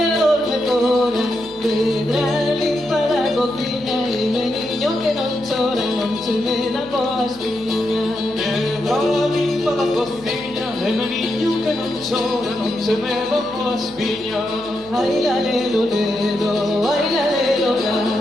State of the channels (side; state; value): right; noise; hum, 23 dB below the sound